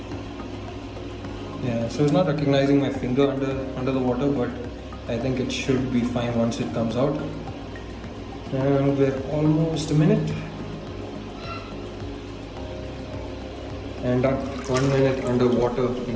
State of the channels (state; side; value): identical; both; correlation 1.00